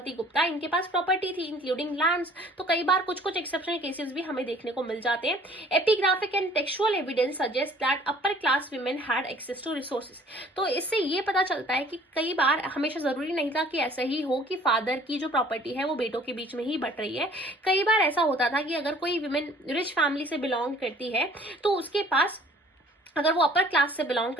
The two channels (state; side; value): normal; both; correlation 0.54